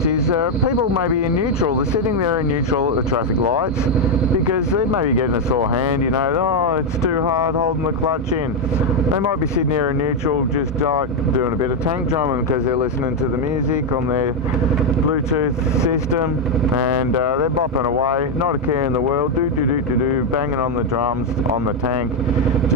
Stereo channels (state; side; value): normal; both; correlation 0.02